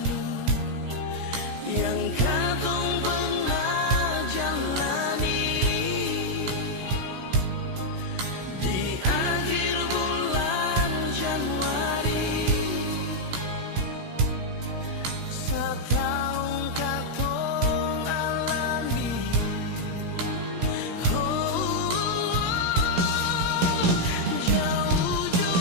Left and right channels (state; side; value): late; left; 16 ms